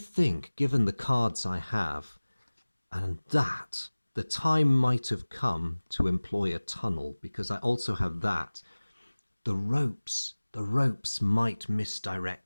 given the cards I have, and that, the time might have come to employ a tunnel, because I also have that. The ropes might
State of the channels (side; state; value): both; inverted; correlation -1.00